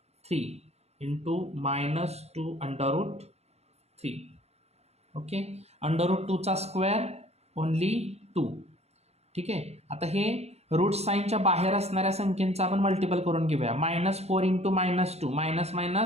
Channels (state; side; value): late; left; 0.31 ms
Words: 3 into minus 2 under root 3. Okay. Under root 2 चा स्क्वेअर ओनली 2 ठीक आहे. आता हे रूट साईनच्या बाहेर असणाऱ्या संख्येचा आपण मल्टिपल करून घेऊया. -4 इंटू -2 मायनस